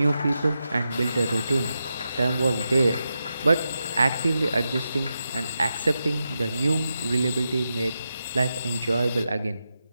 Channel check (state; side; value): inverted; both; correlation -0.88